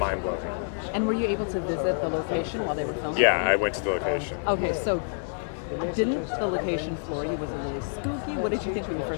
And were you able to visit the location while they were filming? Yeah, I went to the location. Okay, so didn't the location floor you? Was it really spooky? What did you think when you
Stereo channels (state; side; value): silent; right; digital silence